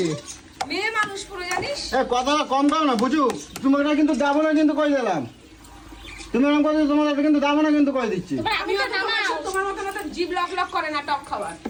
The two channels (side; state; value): both; identical; correlation 1.00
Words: মেয়ে মানুষ পুরো জানিস। কথাটা কম দাও না বুঝু, তোমাকে কিন্তু দেবো না কিন্তু কই দিলাম, তুমি এরকম করে তোমার কিন্তু দেবো না কিন্তু কই দিচ্ছি। আমি তোমার মতো মতো জিভ লক লক করে না টক খাবার।